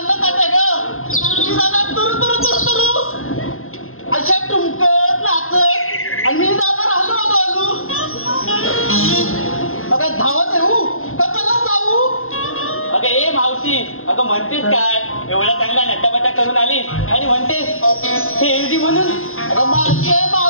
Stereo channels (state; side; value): late; right; 0.61 ms